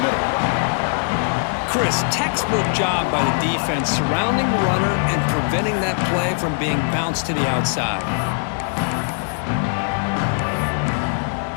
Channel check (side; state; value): right; silent; digital silence